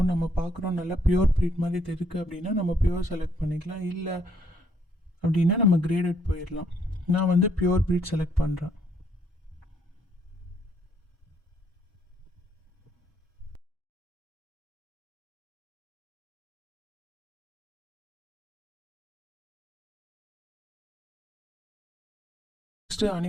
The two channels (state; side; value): normal; both; correlation 0.70